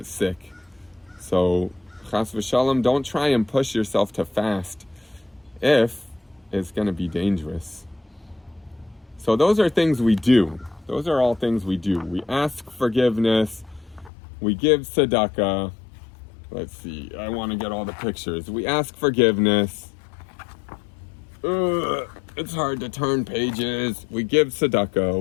sick. So, chas v'shalom, don't try and push yourself to fast if it's going to be dangerous. So those are things we do. Those are all things we do. We ask forgiveness. We give tzedakah. Let's see. I want to get all the pictures. We ask forgiveness. It's hard to turn pages. We give tzedakah.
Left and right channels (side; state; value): right; drops out; at 14.1 s